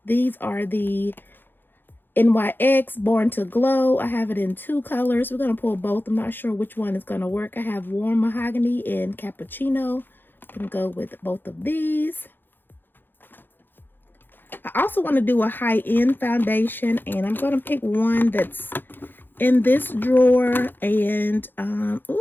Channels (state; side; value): late; right; 0.096 ms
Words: these are the NYX Born to Glow. I have it in 2 colors. We're going to pull both. I'm not sure which one is going to work. I have Warm Mahogany and Cappuccino. I'm going to go with both of these. I also want to do a high-end foundation, and I'm going to pick one that's in this drawer. And